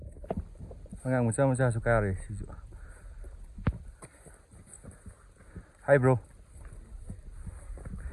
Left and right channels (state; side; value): identical; both; correlation 1.00